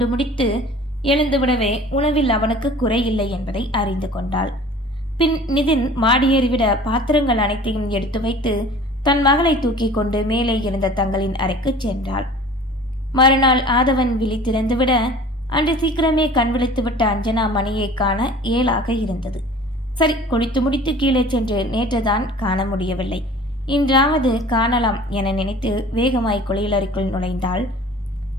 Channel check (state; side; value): normal; both; correlation 0.45